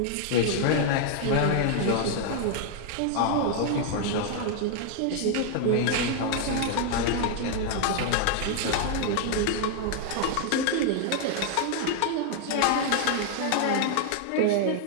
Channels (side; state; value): both; different; correlation 0.00